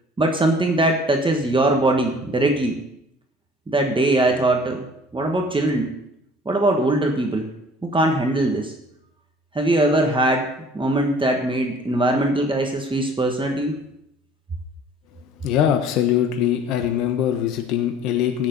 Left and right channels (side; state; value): both; normal; correlation 0.50